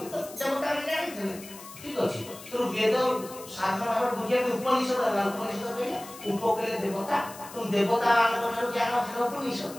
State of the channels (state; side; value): noise; left; hiss, 16 dB below the sound